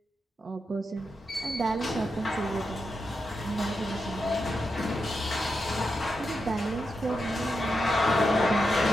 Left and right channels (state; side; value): normal; both; correlation 0.86